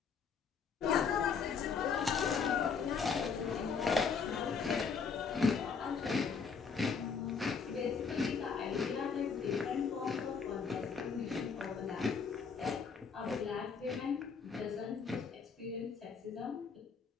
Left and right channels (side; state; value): right; quieter; 5.8 dB